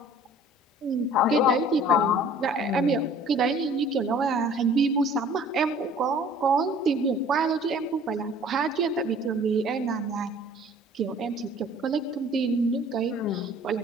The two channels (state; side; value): normal; both; correlation 0.51